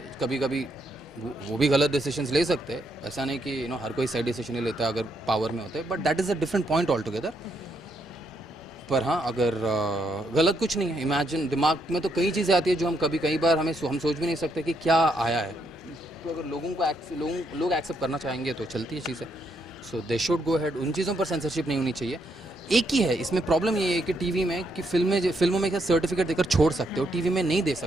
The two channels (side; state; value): both; normal; correlation 0.76